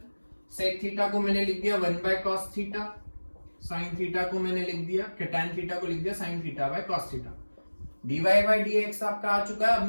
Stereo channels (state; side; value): inverted; both; correlation -1.00